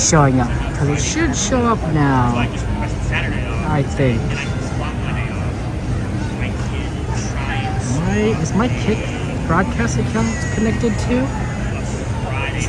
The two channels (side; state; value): both; identical; correlation 1.00